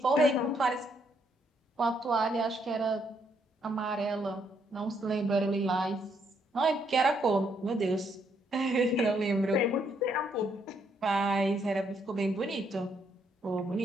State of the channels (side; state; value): both; normal; correlation 0.73